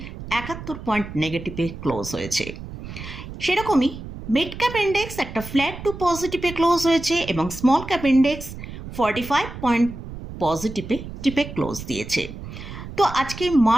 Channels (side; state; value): right; noise; rumble, 11 dB below the sound